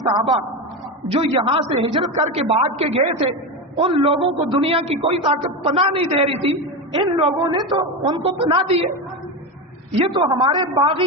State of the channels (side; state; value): both; normal; correlation 0.17